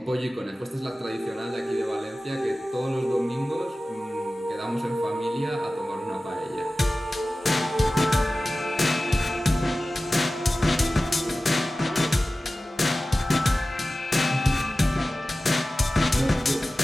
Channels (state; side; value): normal; both; correlation 0.96